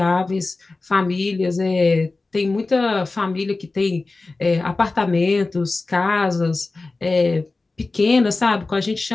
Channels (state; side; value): quieter; right; 3.5 dB